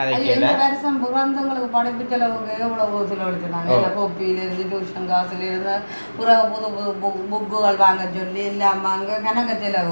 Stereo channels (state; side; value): inverted; both; correlation -1.00